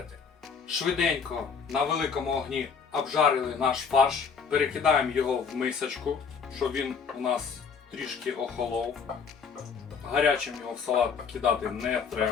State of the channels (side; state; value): right; quieter; 6.0 dB